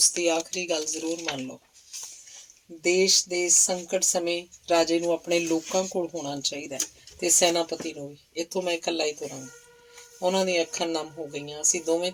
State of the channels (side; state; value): both; identical; correlation 1.00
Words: ਦੀ ਆਖਰੀ ਗੱਲ ਜ਼ਰੂਰ ਮੰਨ ਲਓ। ਦੇਸ਼ ਦੇ ਸੰਕਟ ਸਮੇਂ ਰਾਜੇ ਨੂੰ ਆਪਣੇ ਲੋਕਾਂ ਕੋਲ ਹੋਣਾ ਚਾਹੀਦਾ ਤੇ ਸੈਨਾਪਤੀ ਨੂੰ ਵੀ। ਇੱਥੋਂ ਮੈਂ ਇਕੱਲਾ ਹੀ ਤੁਰਾਂਗਾ। ਉਹਨਾਂ ਦੀਆਂ ਅੱਖਾਂ ਨਮ ਹੋ ਗਈਆਂ। ਅਸੀਂ ਦੋਵੇਂ